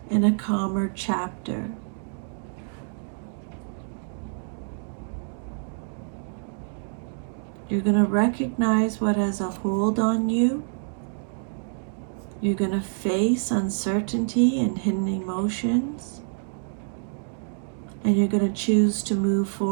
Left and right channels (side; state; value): left; silent; 60 dB below the other